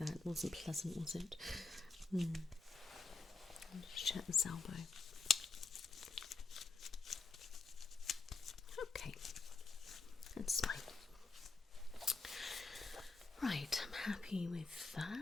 It wasn't pleasant, was it? Just check this elbow. Okay, that's fine. Right, I'm happy with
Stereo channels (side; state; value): right; quieter; 4.1 dB